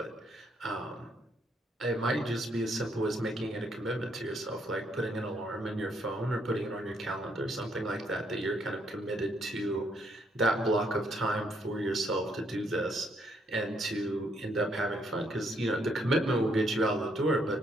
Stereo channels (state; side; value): normal; both; correlation 0.72